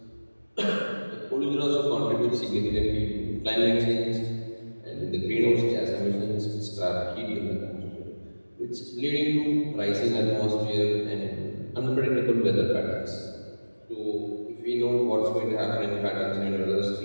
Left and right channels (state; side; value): inverted; both; correlation -1.00